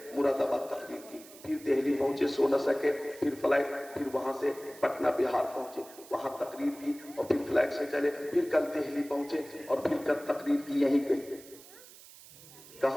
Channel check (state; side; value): noise; right; hiss, 20 dB below the sound